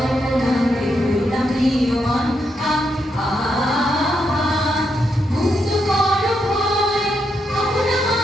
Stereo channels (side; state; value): both; normal; correlation 0.80